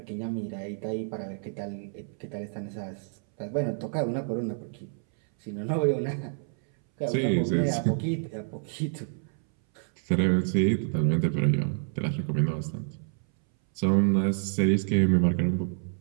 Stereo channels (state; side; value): silent; left; 59 dB below the other